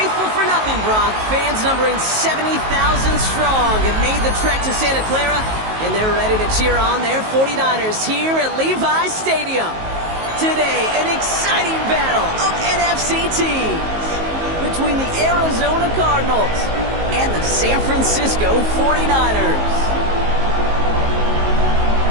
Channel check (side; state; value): left; late; 19 ms